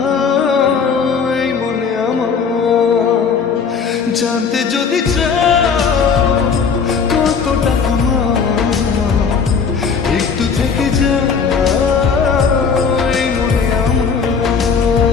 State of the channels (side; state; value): right; quieter; 5.9 dB